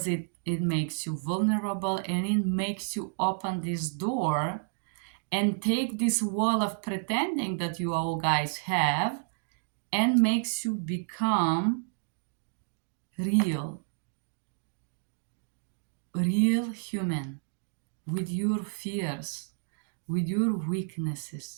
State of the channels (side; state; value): left; silent; digital silence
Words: it makes you vulnerable, and it makes you open this door and take this wall of pretending that you all guys have, and makes you become real human, with your fears, with your